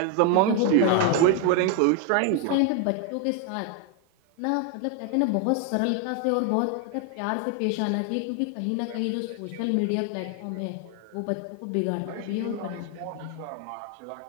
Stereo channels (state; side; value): different; both; correlation 0.01